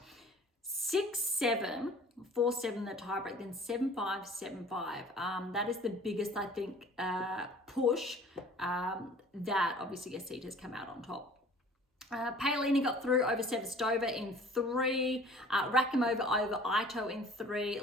6-7, 4-7 the tiebreak, then 7-5, 7-5. That is the biggest, I think, push that obviously Asita has come out on top. Paolini got through over Sevastova in 3, Rakimova over Ito in 3,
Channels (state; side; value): normal; both; correlation 0.49